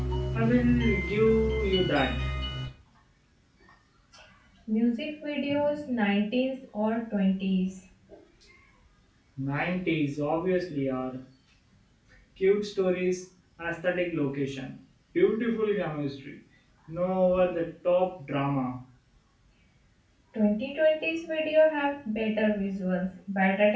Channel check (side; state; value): both; identical; correlation 1.00